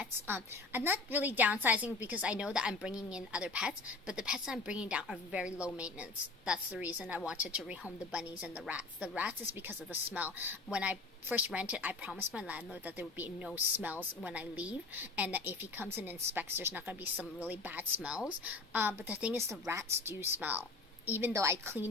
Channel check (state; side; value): quieter; right; 3.6 dB